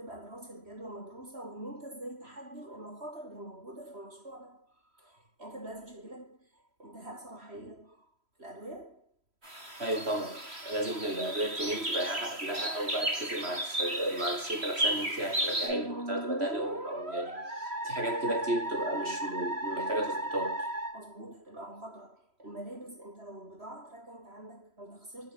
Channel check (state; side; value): late; left; 3.1 ms